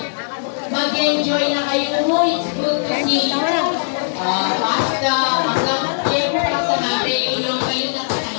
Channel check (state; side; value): silent; right; digital silence